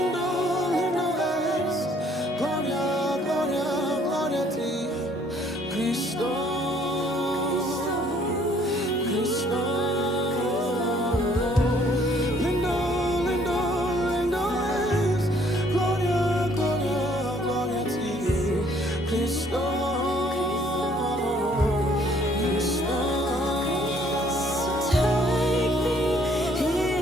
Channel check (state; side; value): normal; both; correlation 0.62